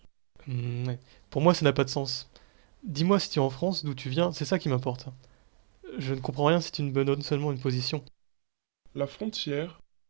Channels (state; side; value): silent; left; 56 dB below the other